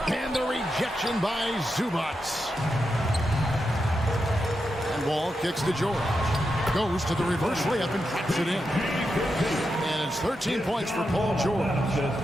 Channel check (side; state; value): both; normal; correlation 0.87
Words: And the rejection by Zubats. And Wall kicks to George. Goes to the reverse layup and traps it in. And it's 13 points for Paul George.